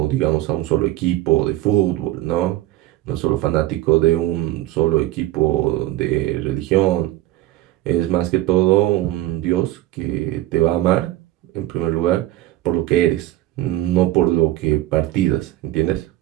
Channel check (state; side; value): quieter; left; 16.0 dB